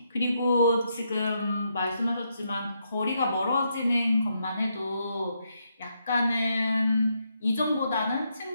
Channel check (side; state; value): both; inverted; correlation -0.79